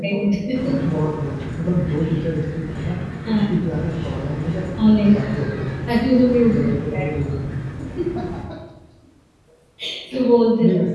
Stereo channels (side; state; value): both; identical; correlation 1.00